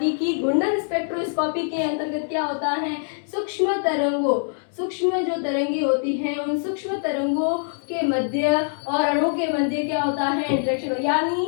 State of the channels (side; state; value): right; silent; digital silence